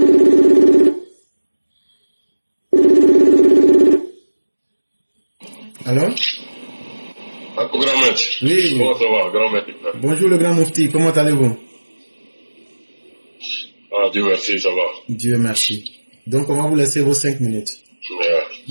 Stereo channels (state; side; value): inverted; both; correlation -1.00